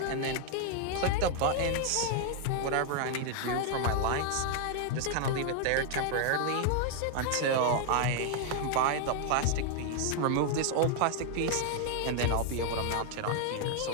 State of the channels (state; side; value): different; both; correlation 0.00